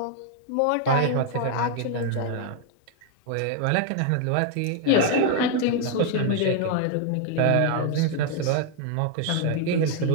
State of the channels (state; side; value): different; both; correlation 0.00